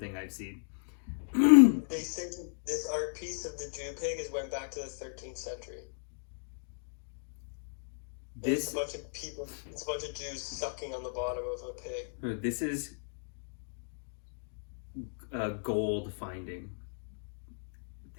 I've seen. They say this art piece of the Jew pig went back to the 13th century. It's This a bunch of people. It's a bunch of Jews sucking on the bottom of a pig. this is gold finding.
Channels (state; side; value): silent; right; digital silence